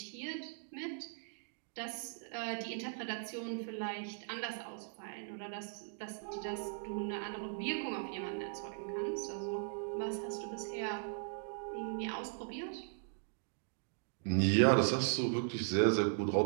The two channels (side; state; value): left; silent; digital silence